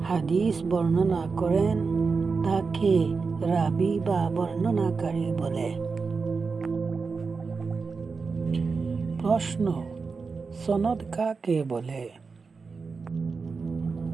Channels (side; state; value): left; quieter; 4.7 dB